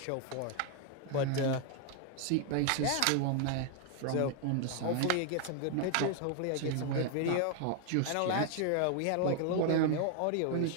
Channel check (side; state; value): both; different; correlation 0.00